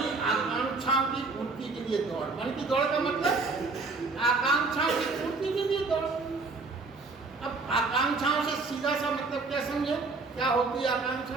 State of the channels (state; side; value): quieter; left; 3.9 dB